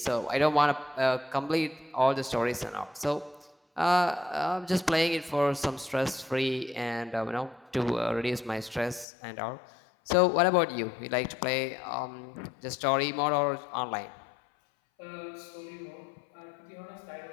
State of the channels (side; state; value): right; drops out; at 9.1 s